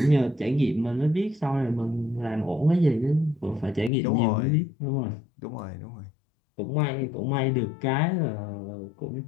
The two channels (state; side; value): drops out; right; at 3.9 s